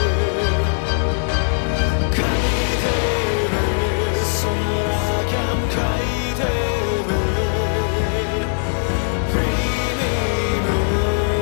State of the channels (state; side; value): silent; right; digital silence